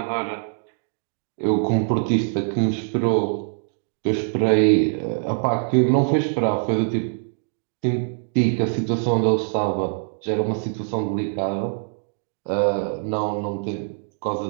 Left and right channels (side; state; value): left; silent; digital silence